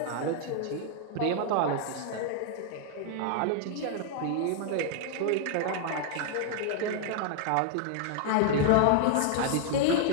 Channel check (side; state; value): both; different; correlation -0.01